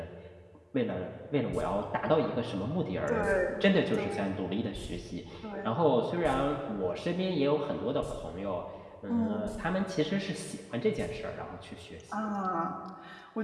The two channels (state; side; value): identical; both; correlation 1.00